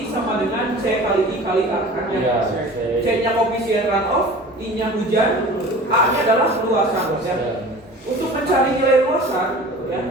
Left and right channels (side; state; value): both; normal; correlation 0.40